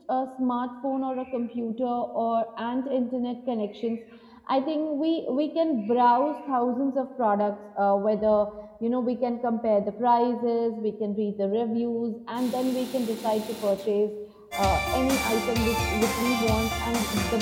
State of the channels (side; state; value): both; identical; correlation 1.00